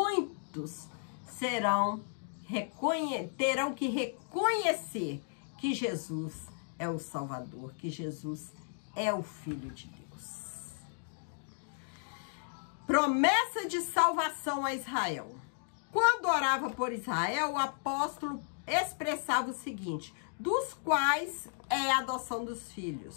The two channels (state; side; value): silent; right; digital silence